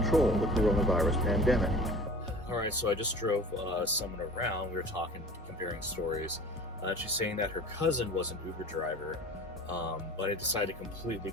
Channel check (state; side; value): normal; both; correlation 0.41